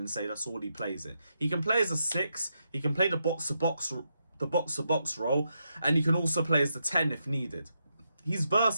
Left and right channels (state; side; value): inverted; both; correlation -0.83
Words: say that's all he plays in. He can play as a 6. He can play the box-to-box role, and he can also play as the 10 if needed. He's